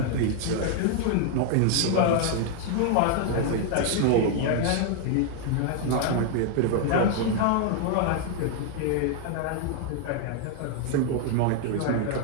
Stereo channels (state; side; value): different; both; correlation 0.00